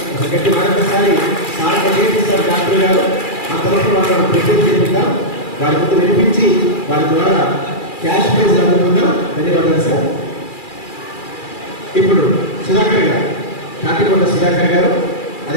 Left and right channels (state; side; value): late; right; 2.4 ms